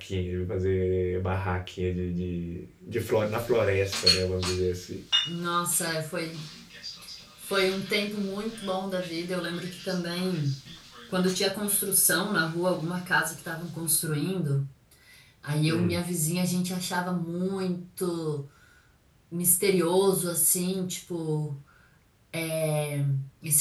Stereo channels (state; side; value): identical; both; correlation 1.00